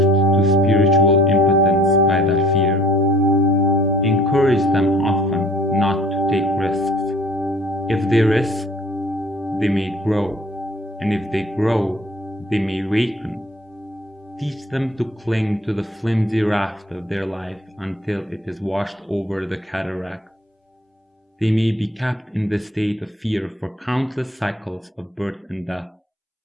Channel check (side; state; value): both; normal; correlation 0.53